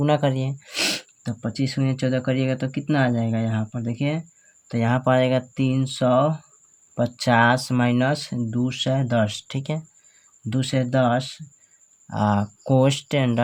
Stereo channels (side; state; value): both; identical; correlation 1.00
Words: करिए, तो 25 × 14 करिएगा तो कितना आ जाएगा यहाँ पर देखिए, तो यहाँ पर आएगा 350 माइनस 210, ठीक है। 210 कोष्ट